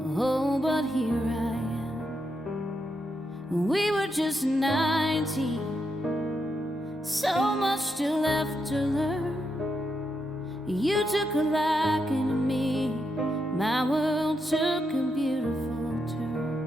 Oh, but here I am. We were just 19, so much still left to learn. You took a liking to me, my world took a beautiful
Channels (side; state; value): both; normal; correlation 0.83